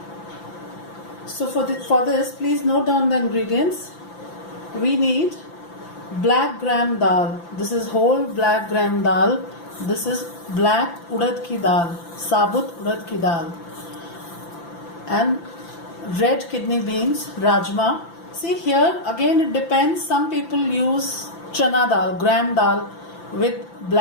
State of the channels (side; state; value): right; late; 5.9 ms